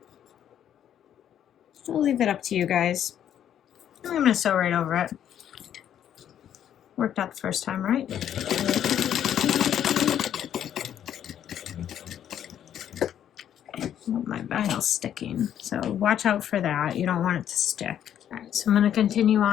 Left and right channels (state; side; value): quieter; right; 10.0 dB